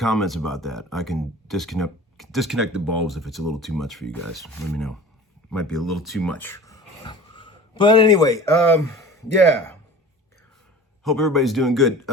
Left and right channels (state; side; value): normal; both; correlation 0.40